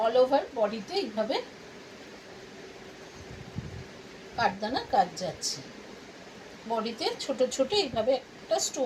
অল ওভার বডিতে এইভাবে কাঠদানা কাজ যাচ্ছে, বডিতে ছোট ছোট এইভাবে একটা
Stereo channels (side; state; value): both; identical; correlation 1.00